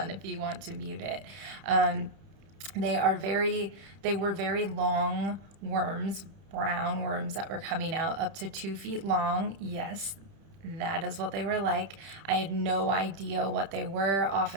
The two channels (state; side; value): late; left; 31 ms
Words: if you want to mute it. They were very long worms, brown worms that were coming out up to 2 feet long. Yes, that is what they were like. I had no idea what they were.